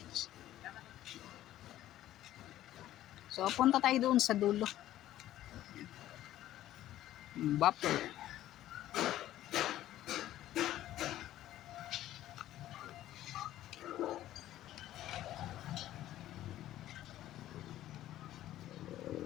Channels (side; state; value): right; quieter; 13.6 dB